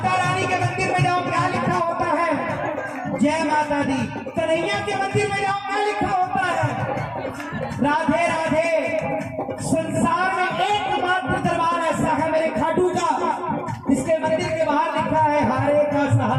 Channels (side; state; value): both; identical; correlation 1.00